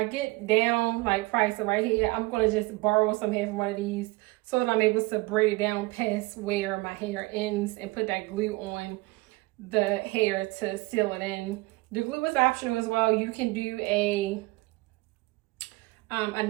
get down, like price right here, I'm going to just borrow some hair from one of these so that I'm able to braid it down past where my hair ends and put that glue on the hair to seal it in. The glue is optional as well. You can do a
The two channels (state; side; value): quieter; left; 23.0 dB